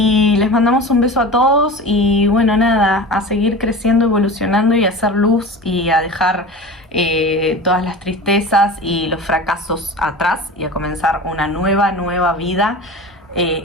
les mandamos un beso a todos. Y bueno, nada, a seguir creciendo, evolucionando y a hacer luz, y a dejar todas las tristezas y los fracasos atrás, y a comenzar una nueva vida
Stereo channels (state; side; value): normal; both; correlation 0.33